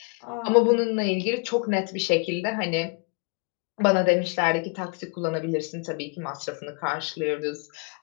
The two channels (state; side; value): quieter; right; 32.9 dB